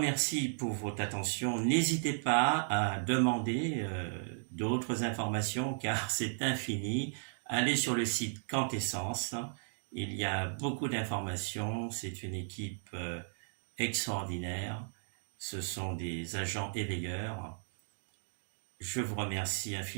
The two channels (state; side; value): silent; left; digital silence